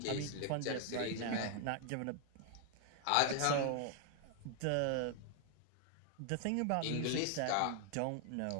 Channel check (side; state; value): both; different; correlation 0.00